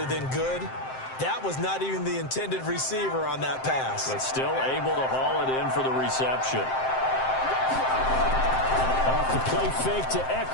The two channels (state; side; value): late; right; 7.7 ms